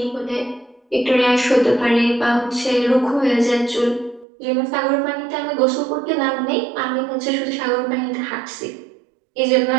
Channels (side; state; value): left; drops out; at 4.2 s